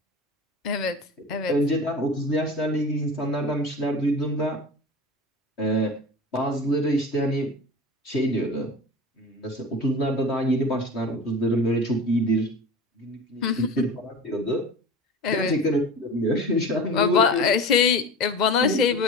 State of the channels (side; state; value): both; normal; correlation 0.34